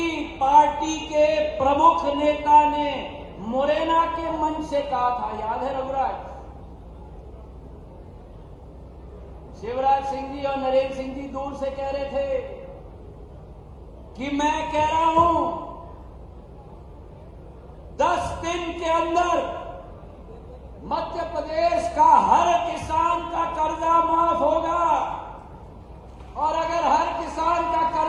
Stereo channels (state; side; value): identical; both; correlation 1.00